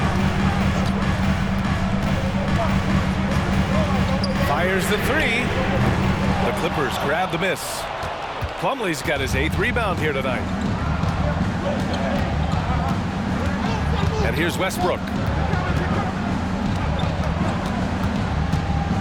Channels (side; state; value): both; identical; correlation 1.00